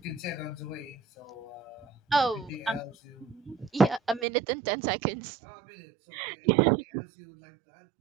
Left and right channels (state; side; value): drops out; left; at 4.2 s